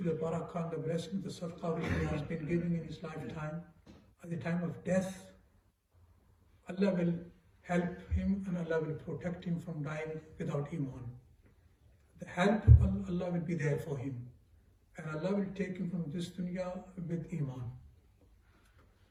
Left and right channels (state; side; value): identical; both; correlation 1.00